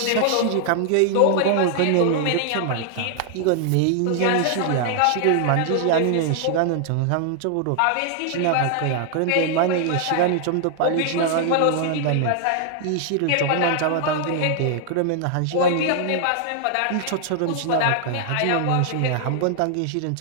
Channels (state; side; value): different; both; correlation 0.00